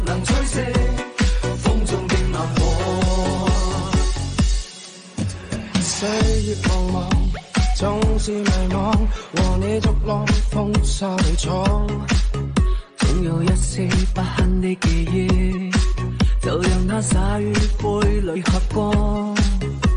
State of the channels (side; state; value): both; identical; correlation 1.00